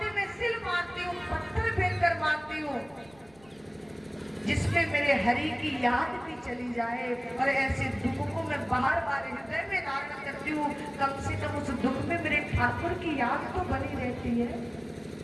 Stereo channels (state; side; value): noise; right; rumble, 28 dB below the sound